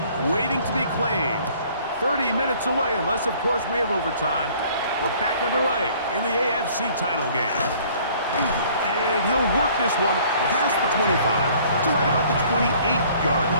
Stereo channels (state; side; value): inverted; both; correlation -0.55